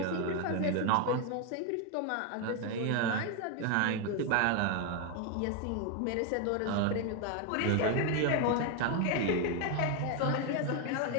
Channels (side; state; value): both; different; correlation 0.01